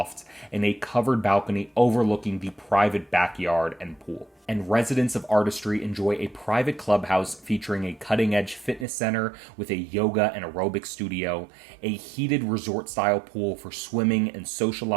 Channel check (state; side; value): drops out; left; at 8.8 s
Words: and a covered balcony overlooking the private backyard and pool. And residents of Artistry enjoy a private clubhouse featuring a cutting-edge fitness center with a yoga and aerobic studio, a heated resort-style pool for swimming and